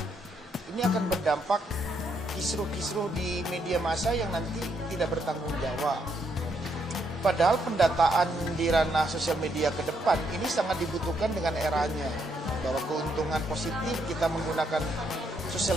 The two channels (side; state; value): both; normal; correlation 0.75